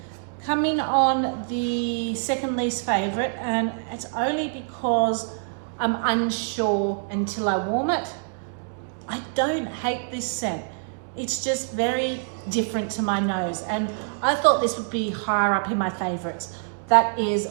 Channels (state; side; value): silent; left; digital silence